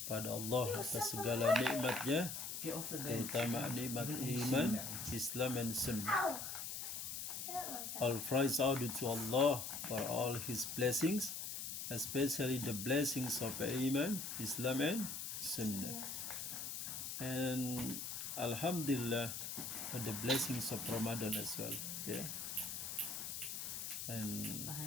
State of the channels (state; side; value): noise; left; hiss, 5 dB below the sound